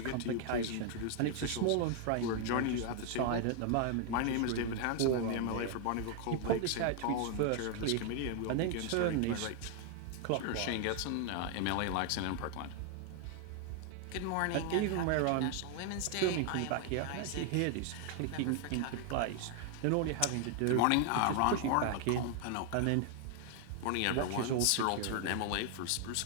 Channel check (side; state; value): both; different; correlation 0.00